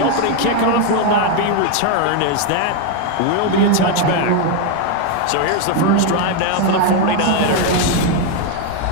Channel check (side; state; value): both; different; correlation 0.01